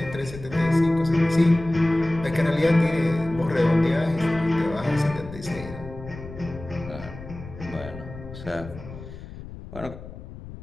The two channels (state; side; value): noise; left; rumble, 14 dB below the sound